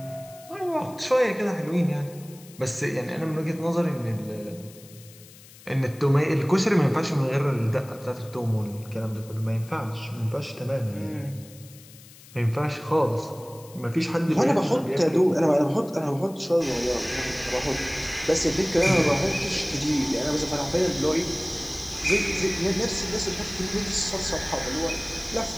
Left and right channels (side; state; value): left; noise; hiss, 21 dB below the sound